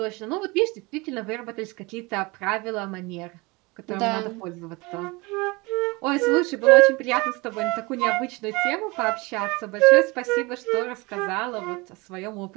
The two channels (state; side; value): quieter; left; 25.0 dB